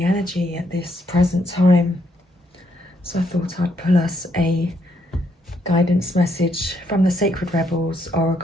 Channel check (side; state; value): both; normal; correlation 0.74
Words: energy at this present time, so I thought I'd pull us a guidance message from the Sacred Rebels